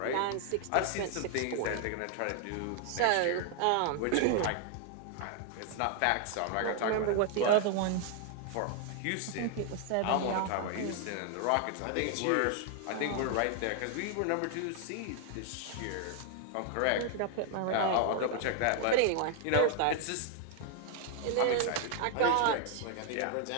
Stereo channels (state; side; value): different; both; correlation 0.00